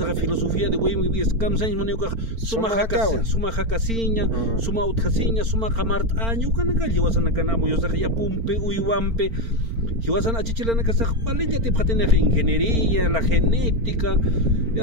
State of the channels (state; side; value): late; left; 4.4 ms